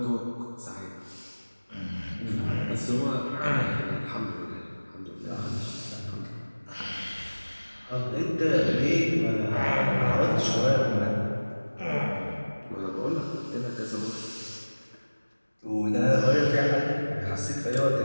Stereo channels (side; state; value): both; inverted; correlation -1.00